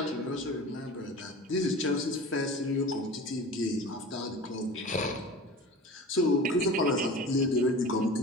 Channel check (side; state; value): both; normal; correlation 0.36